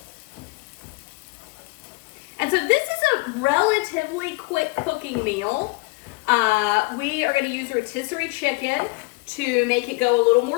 And so this is a relatively quick cooking meal. We are gonna use rotisserie chicken to make it go a little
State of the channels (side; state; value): right; quieter; 27.5 dB